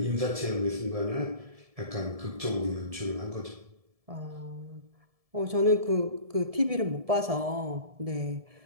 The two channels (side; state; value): left; late; 1.7 ms